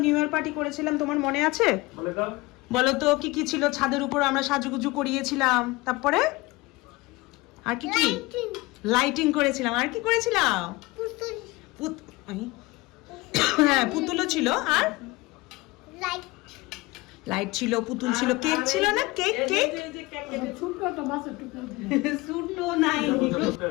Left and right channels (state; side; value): quieter; right; 21.8 dB